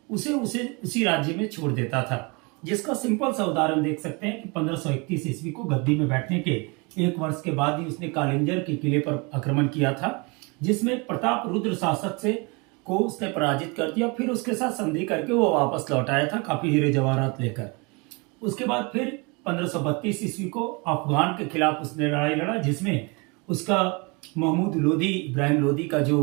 उसे उसी राज्य में छोड़ देता था। जिसका सिंपल सा उदाहरण देख सकते हैं कि 1531 ईस्वी को गद्दी में बैठने के 1 वर्ष के बाद ही उसने कालिंजर के किले पर आक्रमण किया था, जिसमें प्रताप रुद्र शासक को उसने पराजित कर दिया। फिर उसके साथ संधि करके वो वापस लौट आया था काफी हीरे जवाहरात लेकर। उसके बाद फिर 1532 ईस्वी को अफगान के खिलाफ उसने लड़ाई लड़ा, जिसमें उसका महमूद लोदी, इब्राहिम लोदी का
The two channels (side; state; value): left; quieter; 29.4 dB